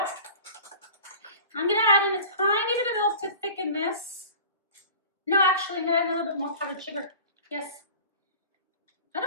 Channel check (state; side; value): inverted; both; correlation -0.40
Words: I'm gonna add in a tiny bit of milk to thicken this. No, actually, I'm gonna add a little bit more powdered sugar. Yes. I